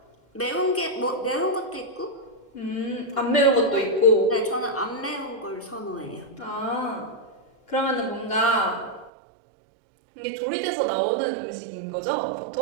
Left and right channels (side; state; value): left; drops out; at 9.1 s